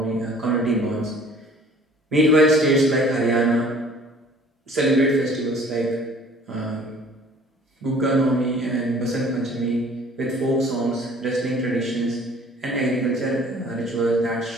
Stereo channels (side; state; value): both; normal; correlation 0.52